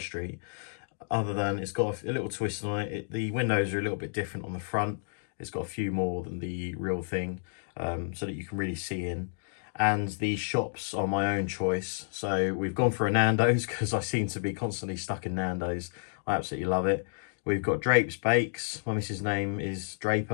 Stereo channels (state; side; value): silent; right; digital silence